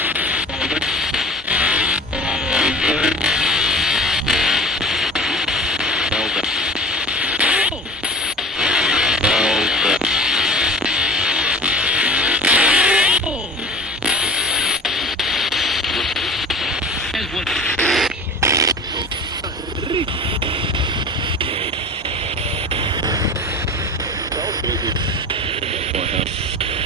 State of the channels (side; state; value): both; normal; correlation 0.39